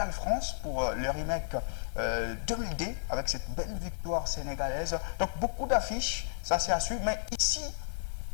pour le remake 2000D avec cette belle victoire sénégalaise. Donc beaucoup d'affiches, ça c'est à suivre. Mais ici,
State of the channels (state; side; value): silent; right; digital silence